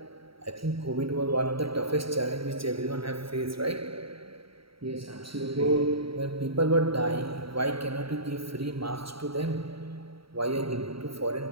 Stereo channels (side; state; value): left; late; 0.75 ms